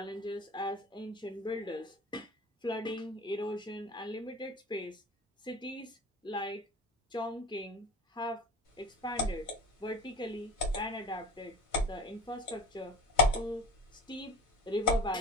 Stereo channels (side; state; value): both; normal; correlation 0.36